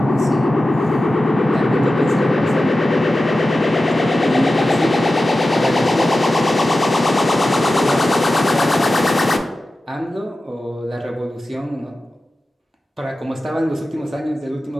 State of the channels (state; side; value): normal; both; correlation 0.94